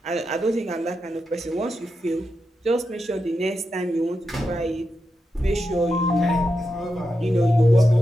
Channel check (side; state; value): both; normal; correlation 0.87